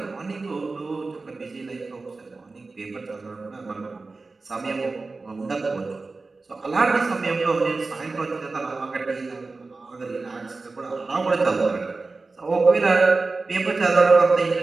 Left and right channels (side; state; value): left; quieter; 3.7 dB